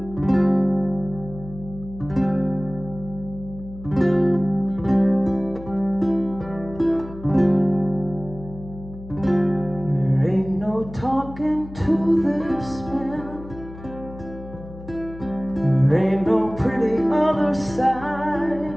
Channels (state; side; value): noise; left; hum, 15 dB below the sound